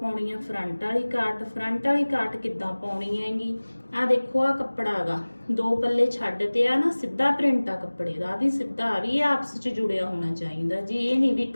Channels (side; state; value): both; inverted; correlation -1.00